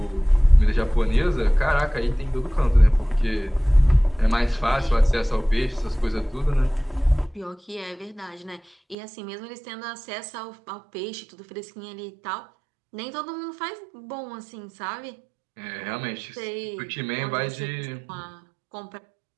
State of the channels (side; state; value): left; drops out; at 9.0 s